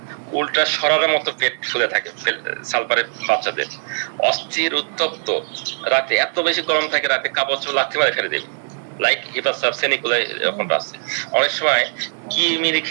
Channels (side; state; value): left; silent; digital silence